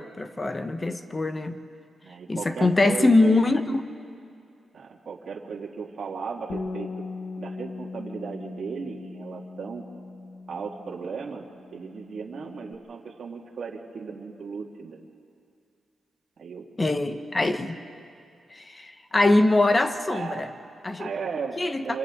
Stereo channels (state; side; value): normal; both; correlation 0.92